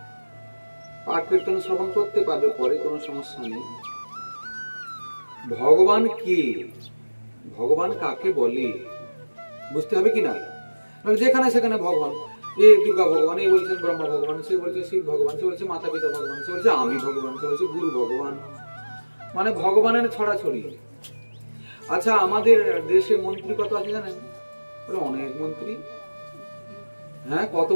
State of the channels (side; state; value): both; inverted; correlation -1.00